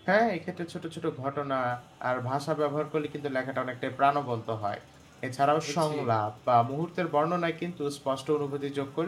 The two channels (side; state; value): both; identical; correlation 1.00